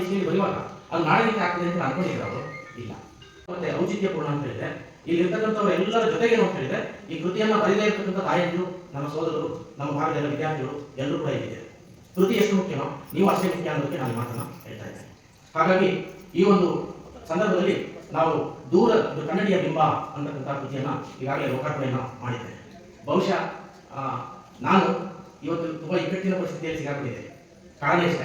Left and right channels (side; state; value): both; identical; correlation 1.00